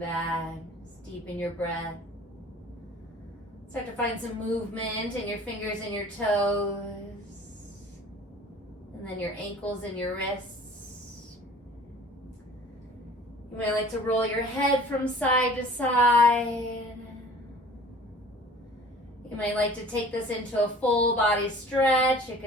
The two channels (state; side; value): normal; both; correlation 0.47